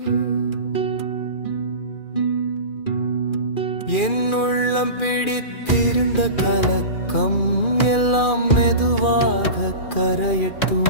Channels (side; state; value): right; late; 2.4 ms